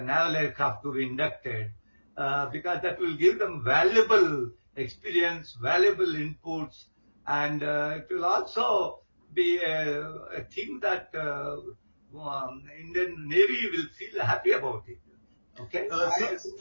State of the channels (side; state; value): both; inverted; correlation -1.00